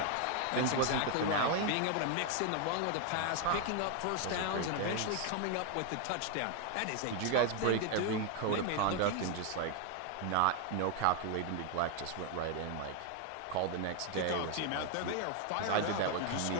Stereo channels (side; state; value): both; different; correlation 0.00